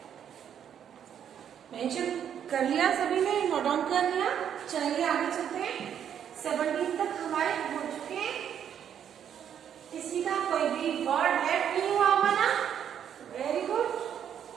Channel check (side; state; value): left; quieter; 9.0 dB